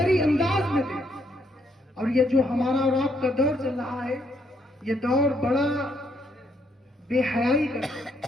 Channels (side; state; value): both; normal; correlation 0.73